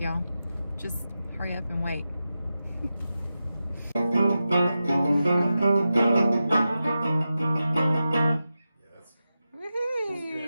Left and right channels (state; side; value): inverted; both; correlation -0.92